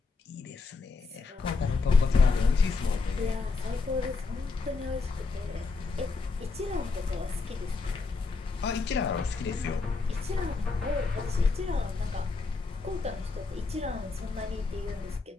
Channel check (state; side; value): quieter; right; 4.1 dB